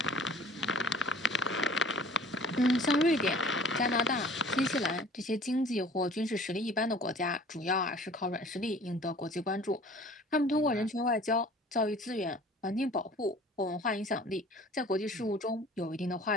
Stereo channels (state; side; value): normal; both; correlation 0.48